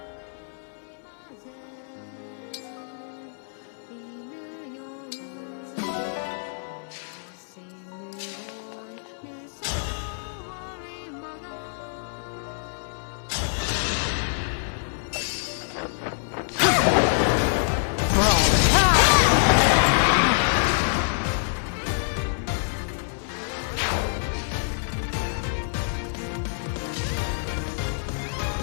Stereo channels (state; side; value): silent; right; 61 dB below the other